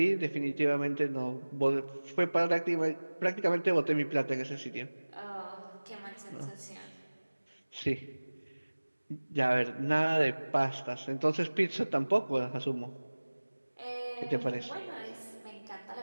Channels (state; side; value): inverted; both; correlation -1.00